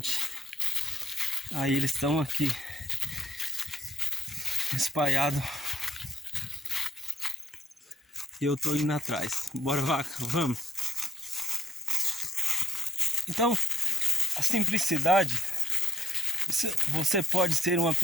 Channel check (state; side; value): normal; both; correlation 0.76